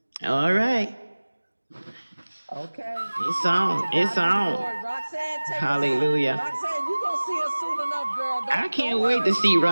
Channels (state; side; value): inverted; both; correlation -1.00